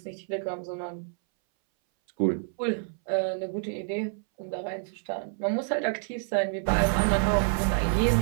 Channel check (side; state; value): left; silent; 59 dB below the other